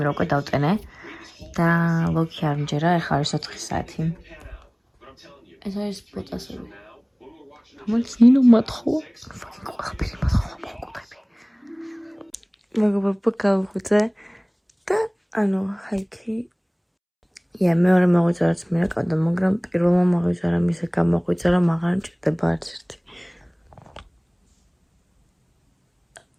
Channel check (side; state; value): both; identical; correlation 1.00